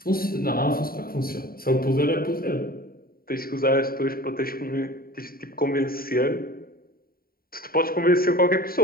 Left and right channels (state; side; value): late; right; 0.43 ms